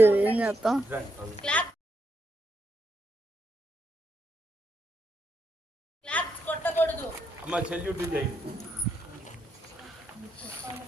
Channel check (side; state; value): both; normal; correlation 0.81